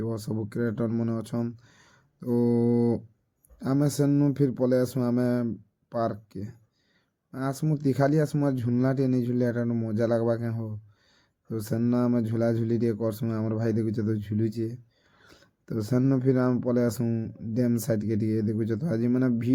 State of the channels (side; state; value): both; identical; correlation 1.00